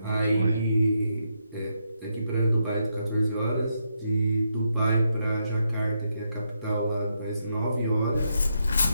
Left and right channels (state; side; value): inverted; both; correlation -0.80